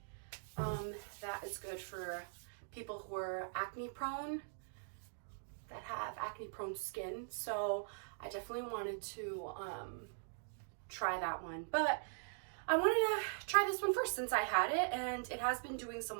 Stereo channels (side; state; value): left; silent; digital silence